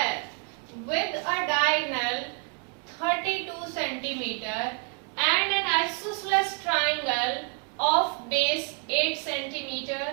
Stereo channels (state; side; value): quieter; left; 36.9 dB